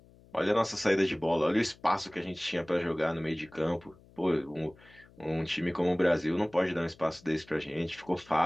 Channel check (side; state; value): left; noise; hum, 26 dB below the sound